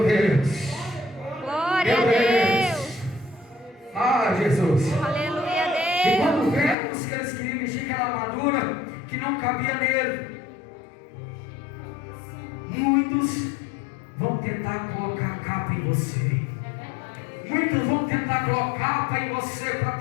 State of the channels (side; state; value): right; drops out; at 6.8 s